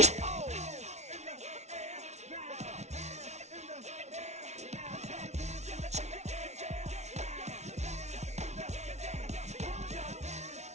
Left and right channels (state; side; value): late; left; 0.32 ms